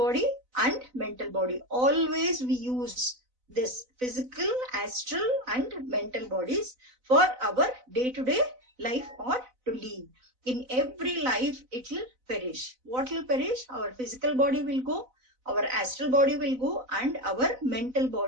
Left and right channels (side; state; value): left; late; 4.0 ms